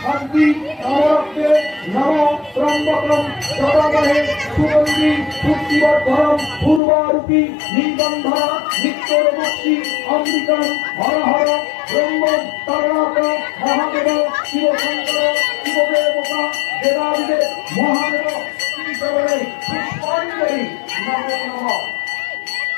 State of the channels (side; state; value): right; drops out; at 6.8 s